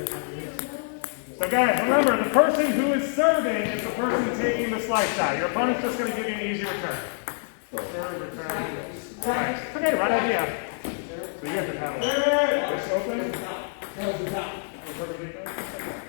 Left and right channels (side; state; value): right; silent; 61 dB below the other